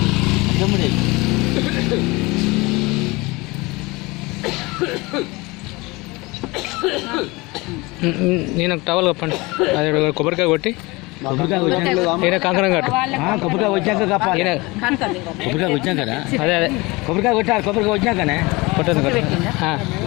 అర్థముడే నేను టవల్ కప్పండి అది కొబ్బరికాయ కొట్టి ఈయన కంకణం కట్టు కొబ్బరికాయ వచ్చాక కప్పాలి కొబ్బరికాయ వచ్చాం కదా అదే అదే కొబ్బరికాయ కొట్టాలి కొబ్బరికాయ వచ్చాకనే కొట్టండి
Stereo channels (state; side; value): quieter; right; 23.7 dB